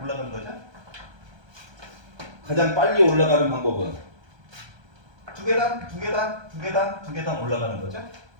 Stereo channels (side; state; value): left; late; 1.2 ms